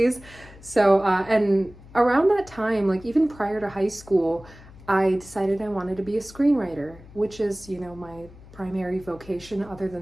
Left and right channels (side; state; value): left; noise; hum, 20 dB below the sound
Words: So and around that time, like even prior to high school, I decided I wanted to be a screenwriter, which is, you know, my primary vocation. Other